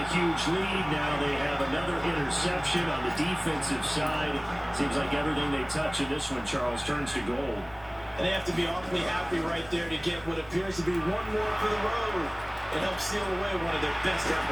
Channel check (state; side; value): noise; left; rumble, 22 dB below the sound